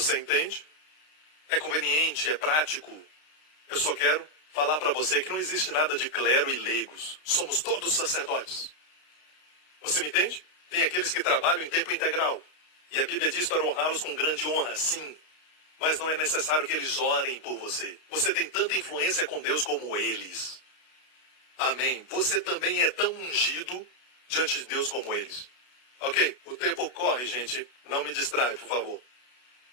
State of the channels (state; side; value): late; right; 32 ms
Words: entende? É conveniente, é prático. Eu só quero falar para você que não existe nada de clero e leigos. Somos todos sacerdotes. Você me entende? Tem aqueles que trabalham em tempo integral. E a Bíblia diz para honrá-los com grande honra, sim. Mas não é necessário que eles orem por você. Você tem tanta influência com Deus como eles. Amém. Você também é tão ungido diante de Deus como eles. Ok? O tempo corre, gente. Não me distrai, por favor.